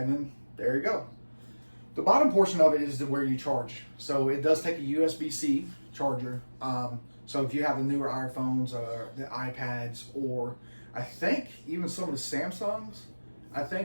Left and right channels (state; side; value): inverted; both; correlation -1.00